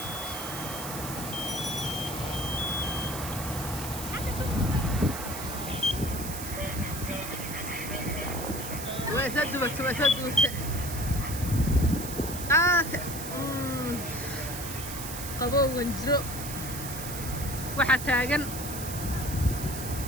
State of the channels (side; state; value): right; noise; hiss, 8 dB below the sound